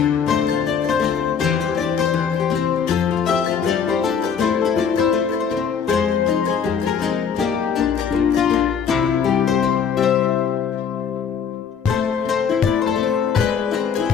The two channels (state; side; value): quieter; right; 7.0 dB